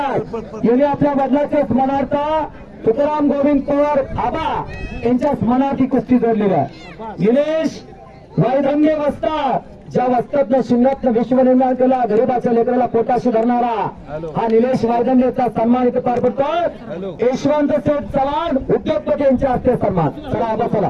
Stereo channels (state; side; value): identical; both; correlation 1.00